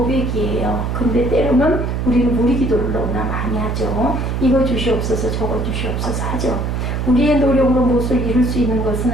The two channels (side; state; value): right; noise; hum, 1 dB below the sound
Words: 근데 때로는 우리는 우리 기도를 너무나 많이 하죠. 이거 주시옵소서 저거 주시옵소서 하죠. 우리의 노력으로 무엇을 이룰 수 있는 것은